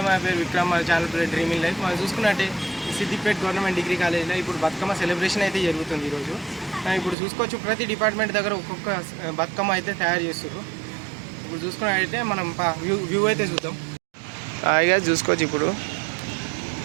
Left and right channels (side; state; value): left; drops out; at 7.2 s